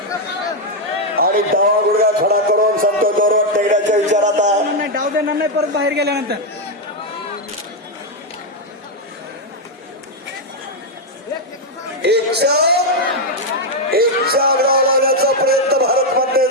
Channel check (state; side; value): normal; both; correlation 0.02